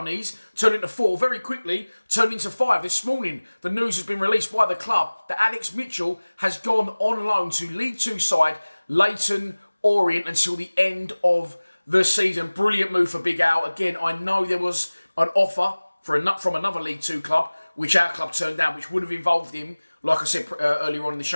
turned into 4 very quickly, turned into 5. This morning, the news has been released by the club that Alex Mitchell has gone on loan to League 2 side Leighton Orient until the end of the season. Brilliant move for Big Al. Again, I know there was an offer from another League 2 club, which our club turned down, which would have involved him, like I said earlier on in the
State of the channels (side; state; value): both; inverted; correlation -1.00